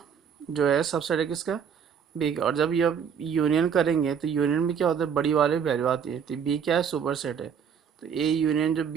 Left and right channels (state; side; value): quieter; left; 7.4 dB